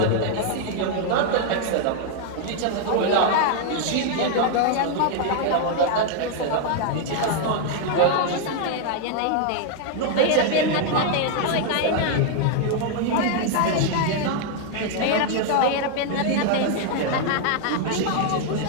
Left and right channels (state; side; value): different; both; correlation 0.00